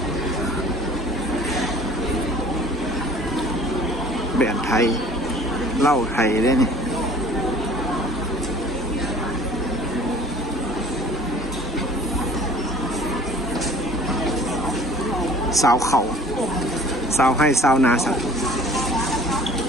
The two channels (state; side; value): normal; both; correlation 0.50